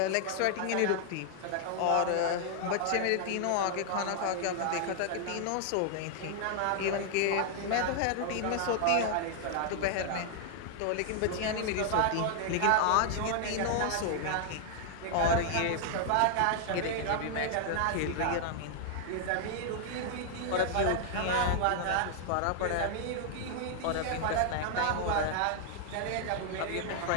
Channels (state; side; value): different; both; correlation 0.00